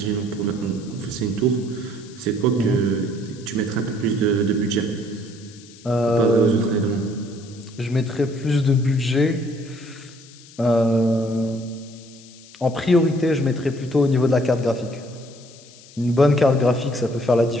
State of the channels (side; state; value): left; noise; hiss, 22 dB below the sound